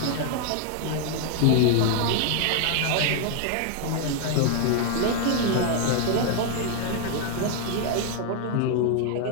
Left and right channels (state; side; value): different; both; correlation 0.00